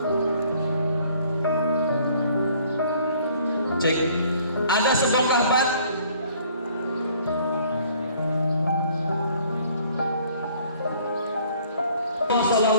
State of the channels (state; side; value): inverted; both; correlation -0.58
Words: Cek, ada sebongkah batu.